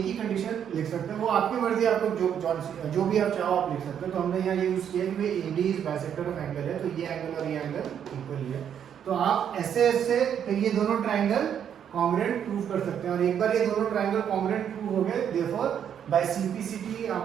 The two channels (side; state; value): left; quieter; 8.8 dB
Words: ही कंडीशन लिख सकते हैं, वो आपकी मर्जी, आपको जो भी आप चाहो आप लिख सकते हो। तो हमने यहाँ ये यूज किया कि भाई AD is bisector of angle है, तो ये एंगल और ये एंगल इक्वल ही है। तो आप ऐसे ऐसे फिर ये दोनों ट्राइंगल कॉन्ग्रुएंट प्रूव कर सकते हैं, और एक बार ये दोनों ट्राइंगल कॉन्ग्रुएंट प्रूव हो गए, देयरफॉर बाय CPCT